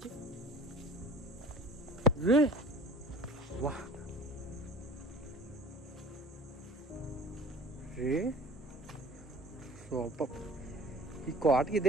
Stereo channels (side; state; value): both; normal; correlation 0.45